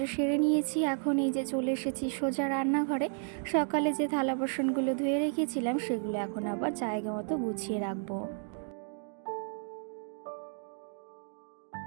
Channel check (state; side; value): silent; left; 56 dB below the other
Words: সেরে নিয়েছি, এখন এই যে চলে এসেছি সোজা রান্নাঘরে। সকালে যে থালা বাসনগুলো ধুয়ে রেখেছিলাম সেগুলো এখন আবার জায়গা মতো গুছিয়ে রাখবো।